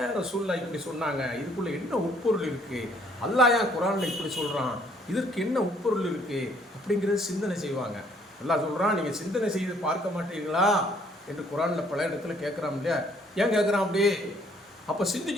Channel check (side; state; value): both; normal; correlation 0.63